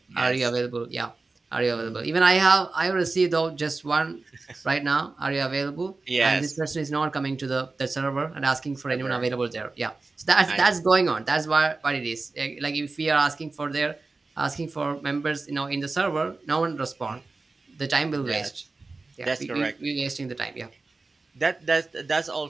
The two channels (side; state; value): left; quieter; 3.7 dB